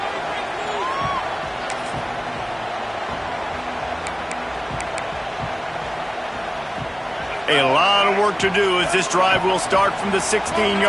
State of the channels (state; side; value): identical; both; correlation 1.00